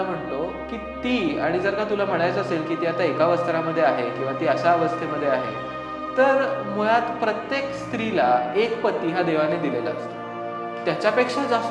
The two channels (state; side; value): identical; both; correlation 1.00